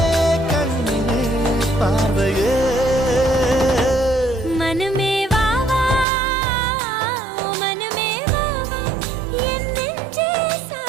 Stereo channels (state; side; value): drops out; left; at 6.1 s